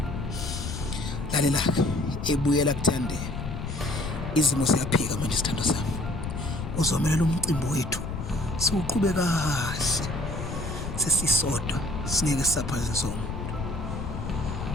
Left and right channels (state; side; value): noise; left; rumble, 6 dB below the sound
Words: Lalela ebuyela kuthandeka. Izimo siyaphika manje sithando sami. Uzomelela umcimbi wethu. Siuqhube kahle. Sesisodwa singeke saphaze sonke.